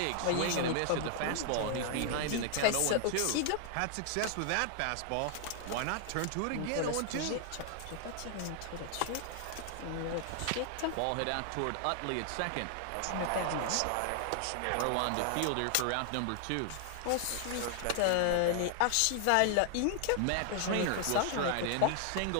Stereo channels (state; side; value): different; both; correlation 0.00